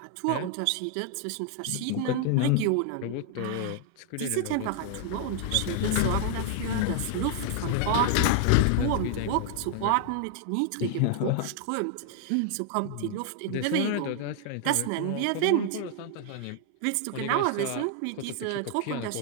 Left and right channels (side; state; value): both; different; correlation 0.00